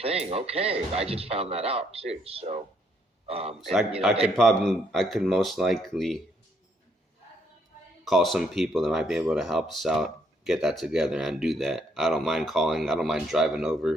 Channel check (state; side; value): normal; both; correlation 0.71